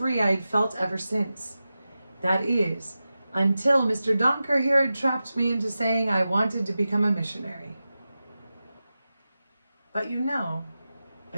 I had felt ever since. That is, until Mr. Donker here had trapped me into saying I wanted to become a missionary. "But you know,"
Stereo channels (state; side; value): inverted; both; correlation -0.93